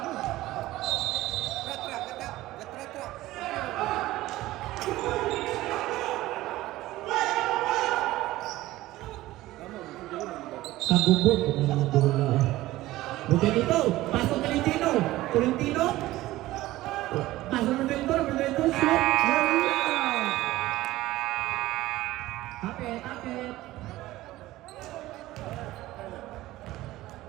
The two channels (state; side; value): quieter; left; 16.8 dB